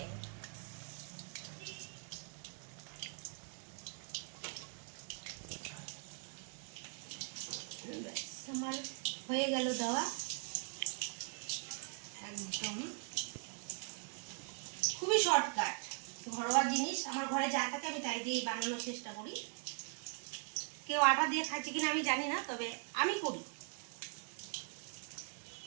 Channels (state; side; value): quieter; left; 40.0 dB